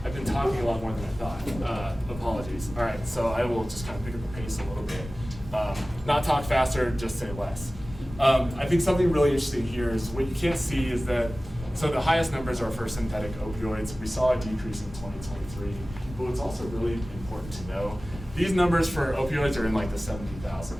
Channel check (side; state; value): both; normal; correlation 0.97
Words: I've been talking a lot more than I thought. Apologies. All right, so I will just kind of pick up the pace a little bit. Not talk faster, just say less. I think something really interesting here is what you can't see is that, so the highest numbers are for synthetic opioids. We saw a decrease in 2023, but what's also really important to know, these numbers for opioids are in like the